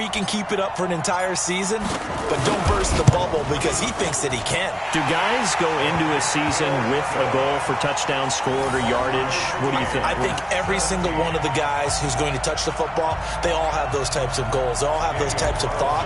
can keep it up for an entire season, but don't burst the bubble because he thinks that he can. Do guys go into a season with a goal for touchdown scored or yardage? What do you think? I think every single one of the guys who's going to touch the football, they all have those types of goals. They all have those types of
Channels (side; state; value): both; identical; correlation 1.00